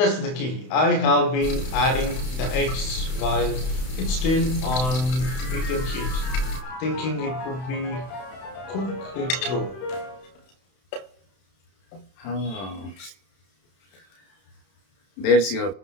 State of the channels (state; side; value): late; right; 31 ms